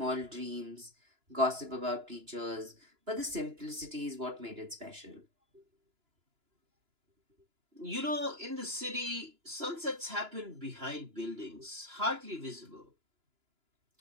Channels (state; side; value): late; left; 2.9 ms